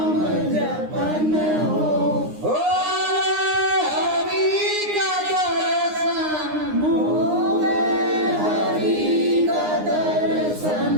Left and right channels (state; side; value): late; left; 9.7 ms